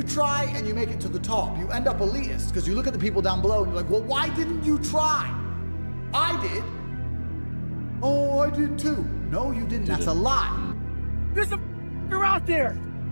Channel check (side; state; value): both; inverted; correlation -1.00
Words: try and you make it to the top, you end up elitist, because you look at the people down below and you're like, well, why didn't you try? I did. Oh, I did too. No, you didn't. That's a lie. There's a f***er out there